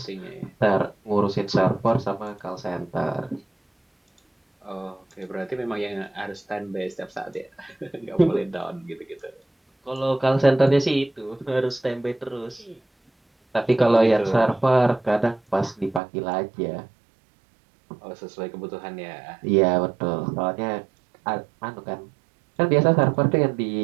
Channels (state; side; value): drops out; left; at 16.0 s